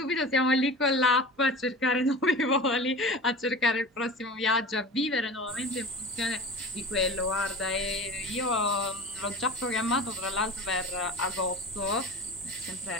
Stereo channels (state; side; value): normal; both; correlation 0.34